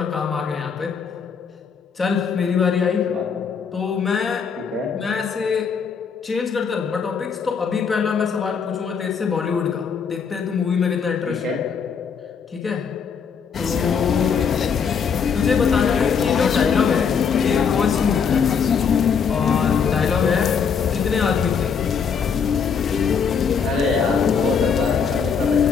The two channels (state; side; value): quieter; right; 6.4 dB